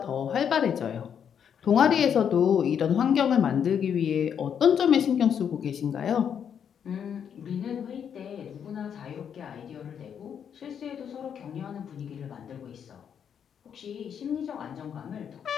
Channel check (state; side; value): quieter; right; 8.1 dB